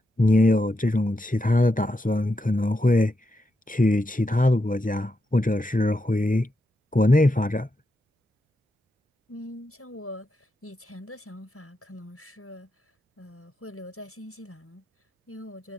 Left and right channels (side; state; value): both; normal; correlation 0.84